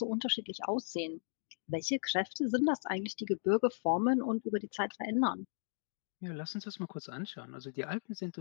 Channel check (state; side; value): silent; right; digital silence